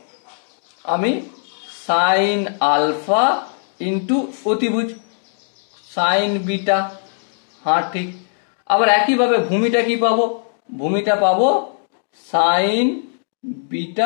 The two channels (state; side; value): silent; right; digital silence